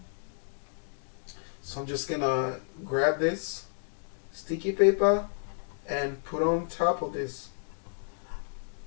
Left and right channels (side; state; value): right; silent; digital silence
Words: So I'm just going to grab this sticky paper and put on top of this.